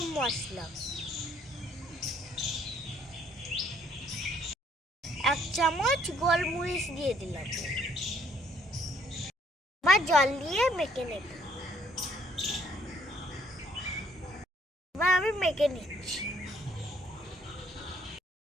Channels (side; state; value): both; normal; correlation 0.65